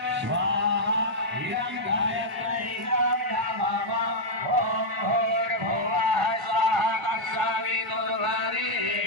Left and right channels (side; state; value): both; normal; correlation -0.04